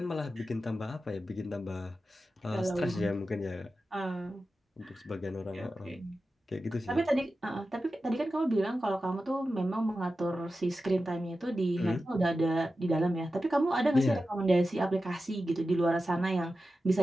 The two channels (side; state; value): both; normal; correlation 0.92